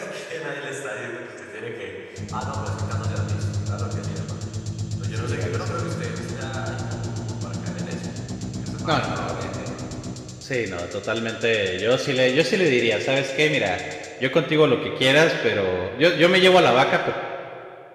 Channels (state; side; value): identical; both; correlation 1.00